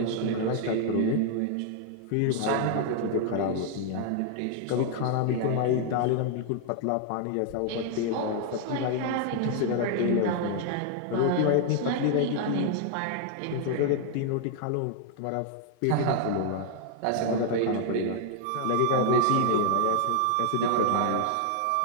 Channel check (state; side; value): different; both; correlation 0.00